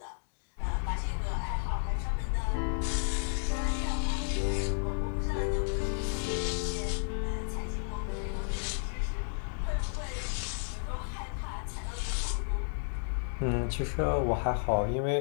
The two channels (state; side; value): silent; right; digital silence